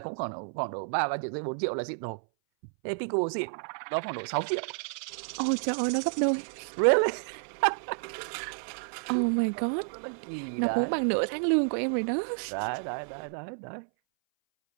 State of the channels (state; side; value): silent; left; 58 dB below the other